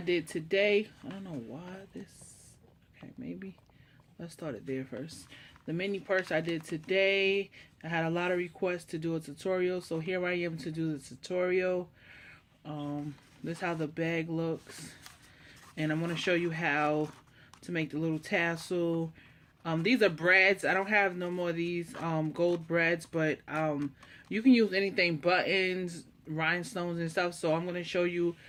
today. I don't know why this, okay, maybe let's start it there first. The mini purse I did today, I had a lot of requests to do a tutorial, so here I am to do the tutorial. This is how the bag looks, and I'm going to show you how to make the little tassel. These are brads. I don't have no more of these gold brads, but you can use anything, buttons, rhinestones and stuff. So I'm going to show you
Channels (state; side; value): identical; both; correlation 1.00